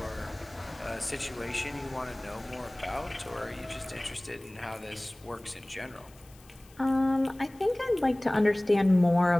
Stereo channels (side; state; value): left; noise; hiss, 26 dB below the sound